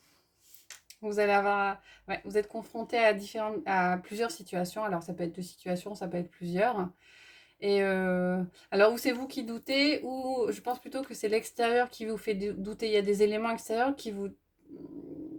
Vous allez avoir, ouais, vous êtes confronté à plusieurs situations. Alors, ça peut être deux situations, ça peut être plusieurs. Et alors, ou c'est vous qui doutez, ou je pense plutôt que c'est l'extérieur qui vous fait douter. Il y a des éléments extérieurs qui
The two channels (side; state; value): both; identical; correlation 1.00